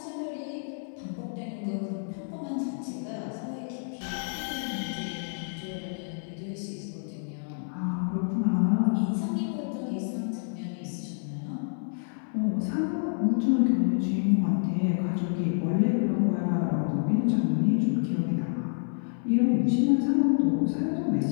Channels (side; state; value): right; silent; digital silence